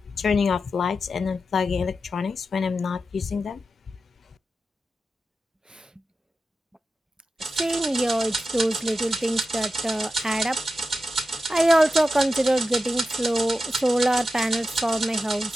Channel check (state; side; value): normal; both; correlation 0.91